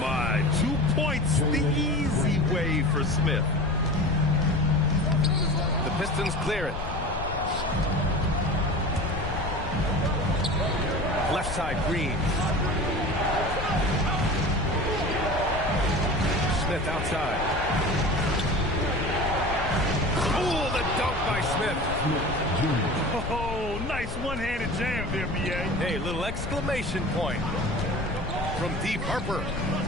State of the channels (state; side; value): noise; left; rumble, 7 dB below the sound